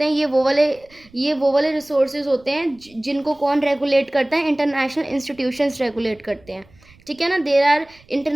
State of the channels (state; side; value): noise; right; rumble, 28 dB below the sound